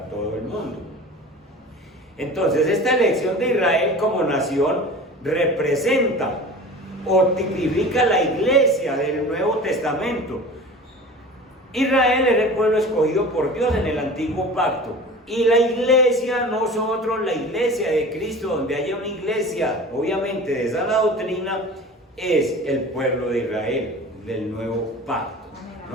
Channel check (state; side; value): normal; both; correlation 0.38